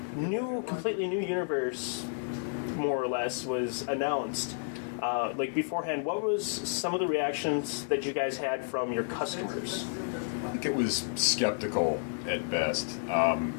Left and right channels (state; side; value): silent; right; digital silence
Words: completely new universe, more or less, was announced. Like beforehand, what was some of the reactions that you guys had from your customers? I think it was skeptical at best.